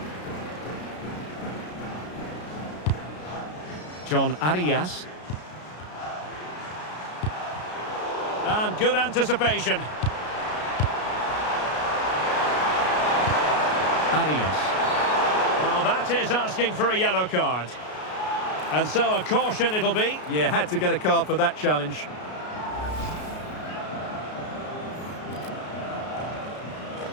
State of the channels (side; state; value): right; late; 33 ms